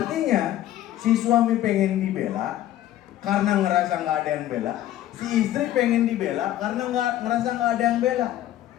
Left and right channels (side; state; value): right; quieter; 13.1 dB